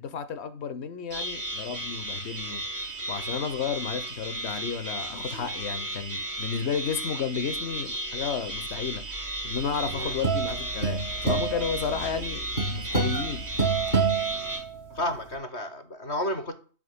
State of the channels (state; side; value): late; right; 3.2 ms